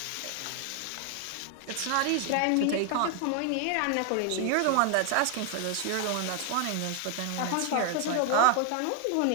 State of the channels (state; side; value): different; both; correlation 0.00